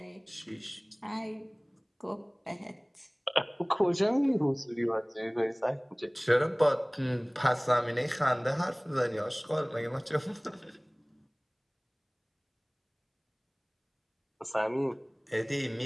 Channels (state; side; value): identical; both; correlation 1.00